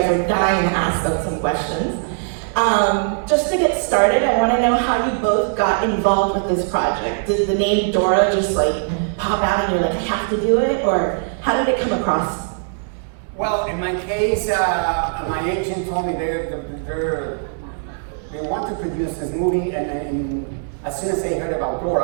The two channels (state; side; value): silent; left; digital silence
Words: are dying to ask them some questions. Just to get started, I want to know how you both got involved with this project. Did the name Dora just like pop out and you're like, I have to do it, or how did it come across? Well, in my case, my agent told me they want to produce this movie, and as soon as they heard about